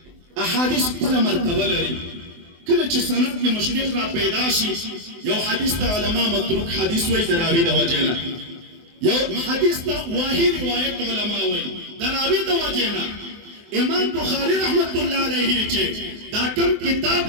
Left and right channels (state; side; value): late; left; 24 ms